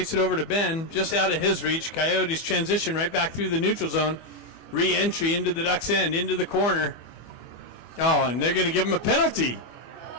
it over to Ben, just out of his reach. Coyotes transition right back through the neutral zone. Re-entry into the Ducks' end, into the corner. Oh, and they're going to give him a penalty.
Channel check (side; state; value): right; late; 24 ms